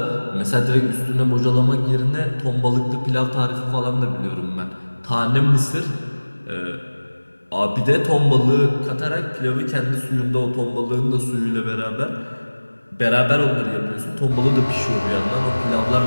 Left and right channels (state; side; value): inverted; both; correlation -1.00